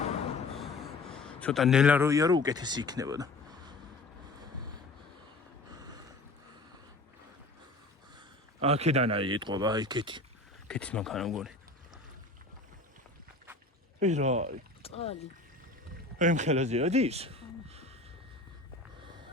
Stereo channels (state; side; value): quieter; right; 3.0 dB